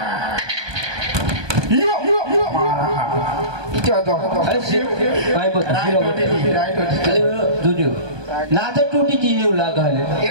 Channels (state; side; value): late; left; 1.2 ms